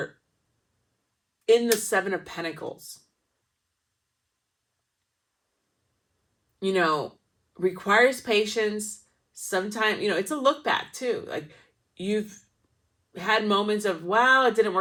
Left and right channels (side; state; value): both; identical; correlation 1.00